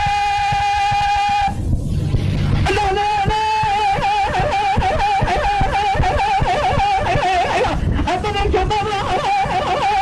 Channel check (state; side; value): identical; both; correlation 1.00